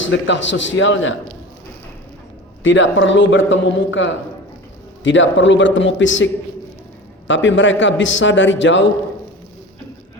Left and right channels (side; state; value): both; normal; correlation 0.34